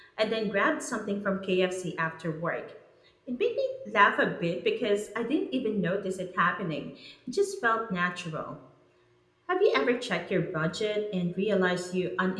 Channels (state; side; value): identical; both; correlation 1.00